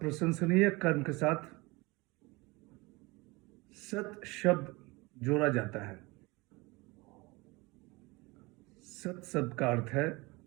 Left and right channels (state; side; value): quieter; left; 24.3 dB